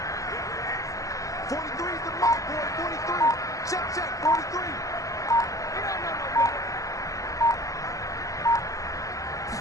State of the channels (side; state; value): right; late; 0.16 ms